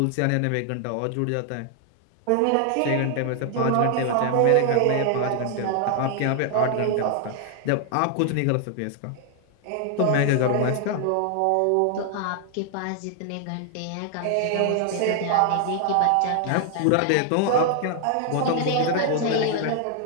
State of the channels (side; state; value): both; different; correlation 0.00